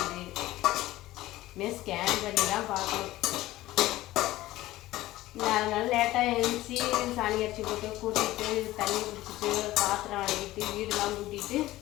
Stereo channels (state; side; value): quieter; right; 16.5 dB